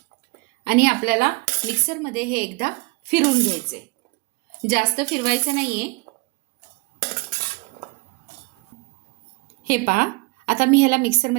आणि आपल्याला मिक्सरमध्ये हे एकदा फिरून घ्यायचे. जास्त फिरवायचं नाहीये. हे पहा, आता मी ह्याला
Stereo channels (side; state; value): left; quieter; 27.9 dB